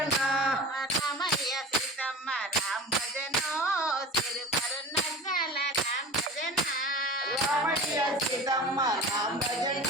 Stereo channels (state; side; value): normal; both; correlation 0.35